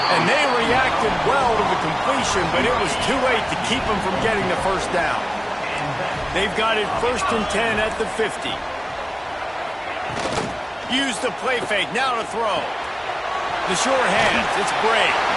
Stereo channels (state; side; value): identical; both; correlation 1.00